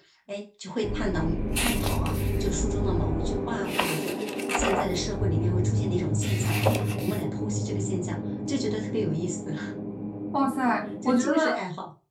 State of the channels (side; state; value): both; identical; correlation 1.00